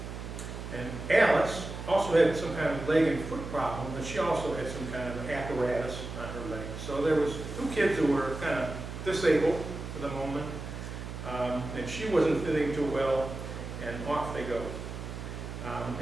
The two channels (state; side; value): noise; right; hum, 8 dB below the sound